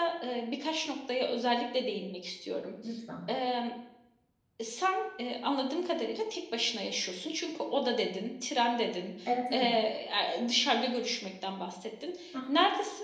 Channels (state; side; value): identical; both; correlation 1.00